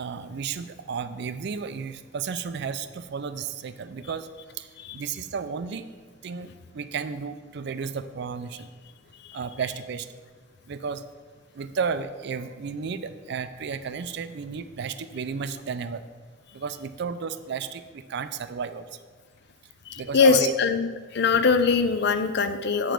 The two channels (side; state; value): both; normal; correlation -0.07